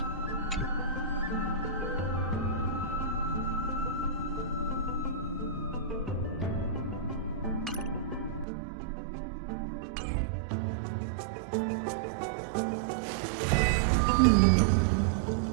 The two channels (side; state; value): left; drops out; at 8.5 s